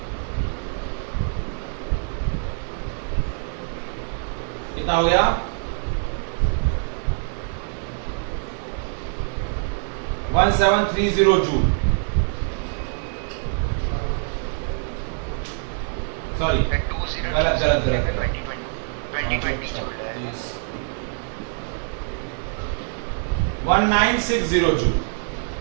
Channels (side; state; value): left; silent; 55 dB below the other